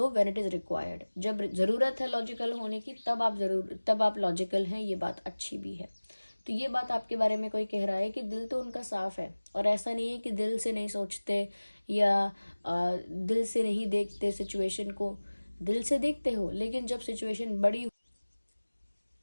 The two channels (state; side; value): inverted; both; correlation -1.00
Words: when it is required. जब ज़रूरत है लॉजिकल होने की, तब आप लॉजिकल हैं, ये बात अच्छी भी है। तो ये बात आपके बारे में कोई कह रहा है कि दिल तो उनका साफ है, और ऐसा नहीं है कि दिल से नहीं सोचते या दिल से नहीं देखते सिचुएशन को। दिल से देखते हो, लेकिन जब सिचुएशन